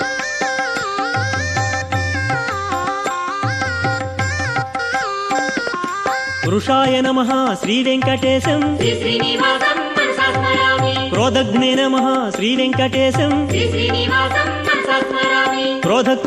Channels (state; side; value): identical; both; correlation 1.00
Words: వృషాయ నమః శ్రీ వెంకటేశం శ్రీ శ్రీనివాసం మనసా స్మరామి. క్రోధగ్నే నమః శ్రీ వెంకటేశం శ్రీ శ్రీనివాసం మనసా స్మరామి.